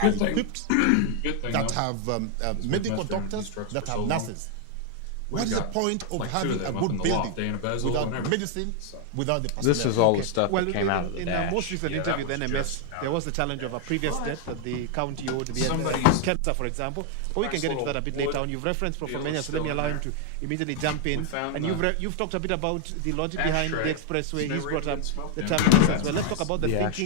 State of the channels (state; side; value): different; both; correlation 0.00